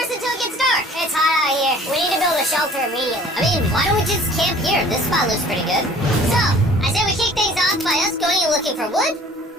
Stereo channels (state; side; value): normal; both; correlation 0.50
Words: until it gets dark. It's hot out here. We need to build a shelter immediately. I mean, why don't we just camp here? This spot looks pretty good. So, I say we kick things off by us going and looking for wood.